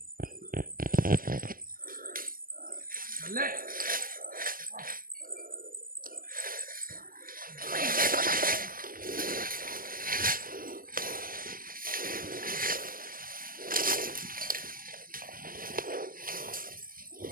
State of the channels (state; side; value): late; left; 0.41 ms